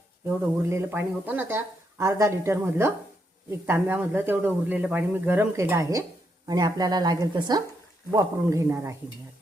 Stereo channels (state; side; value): normal; both; correlation 0.79